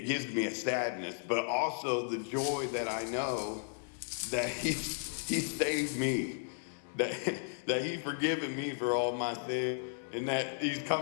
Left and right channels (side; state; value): right; silent; 55 dB below the other